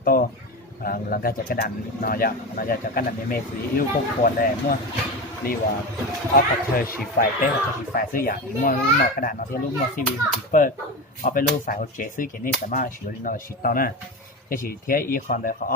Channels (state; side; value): normal; both; correlation 0.22